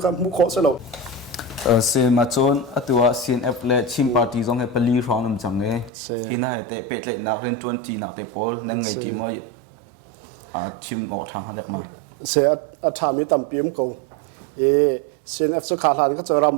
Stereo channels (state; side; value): drops out; left; at 5.9 s